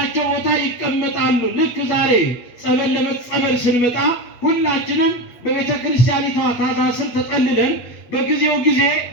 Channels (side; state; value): right; late; 8.2 ms